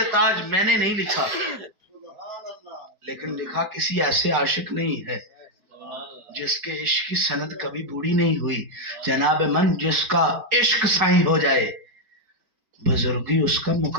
تاج میں نے نہیں لکھا، لیکن لکھا کسی ایسے عاشق نہیں ہے جس کے عشق کی سند کبھی بوڑھی نہیں ہوئی۔ جناب من جس کا عشق سائیں ہو جائے بزرگی اس کا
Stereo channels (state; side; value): late; left; 4.7 ms